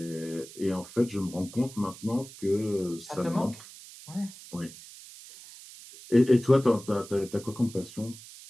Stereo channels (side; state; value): right; noise; hiss, 17 dB below the sound